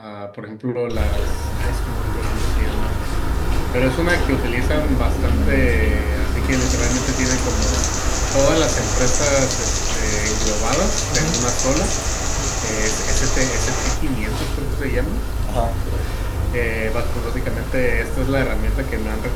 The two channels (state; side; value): identical; both; correlation 1.00